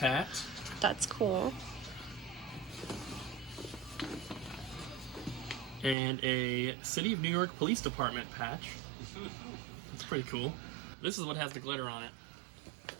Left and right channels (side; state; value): left; drops out; at 6.0 s